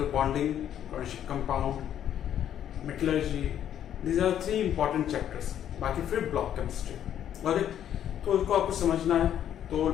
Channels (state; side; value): quieter; right; 10.3 dB